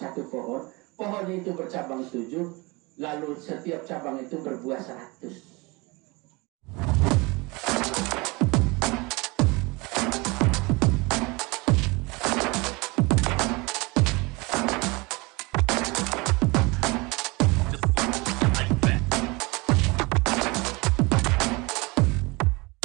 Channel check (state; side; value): quieter; left; 25.7 dB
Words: pohon. Pohon itu bercabang 7, lalu setiap cabang itu berbuah 100.